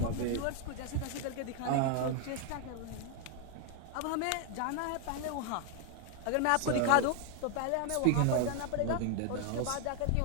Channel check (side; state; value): both; different; correlation 0.01